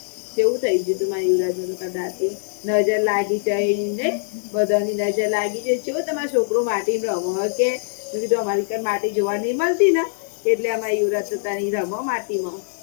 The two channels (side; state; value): right; silent; digital silence